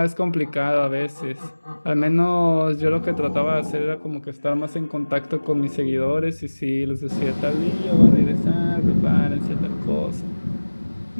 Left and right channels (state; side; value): inverted; both; correlation -1.00